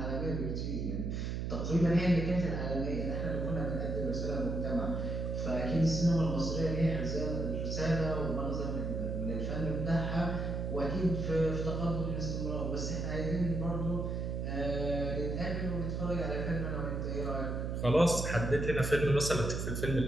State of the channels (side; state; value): right; noise; hum, 2 dB below the sound